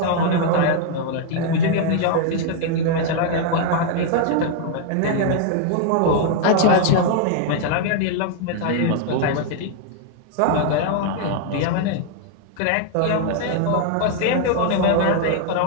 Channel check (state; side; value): different; both; correlation 0.00